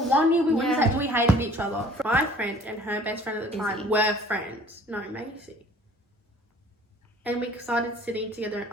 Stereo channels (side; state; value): both; normal; correlation 0.52